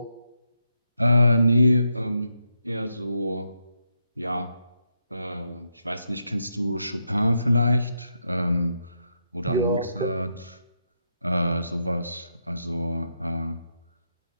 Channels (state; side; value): inverted; both; correlation -0.83